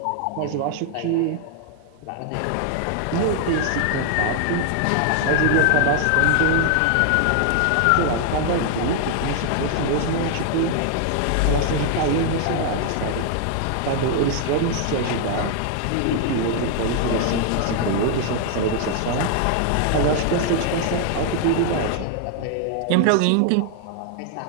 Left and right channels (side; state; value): both; different; correlation 0.00